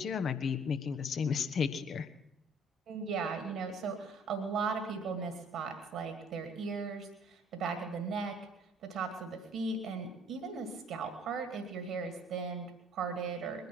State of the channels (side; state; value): both; normal; correlation 0.56